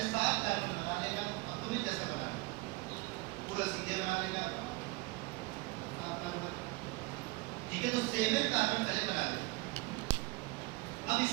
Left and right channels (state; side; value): quieter; left; 23.5 dB